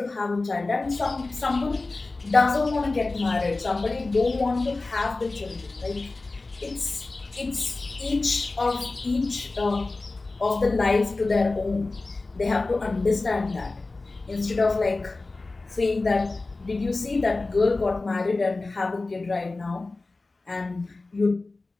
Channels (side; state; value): right; quieter; 3.4 dB